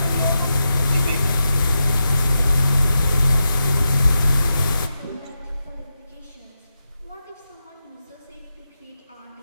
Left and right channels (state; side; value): inverted; both; correlation -0.88